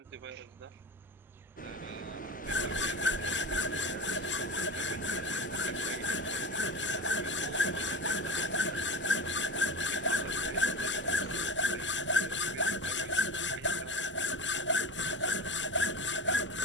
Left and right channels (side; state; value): both; normal; correlation 0.28